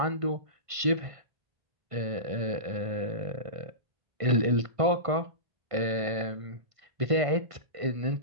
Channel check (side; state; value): left; late; 1.5 ms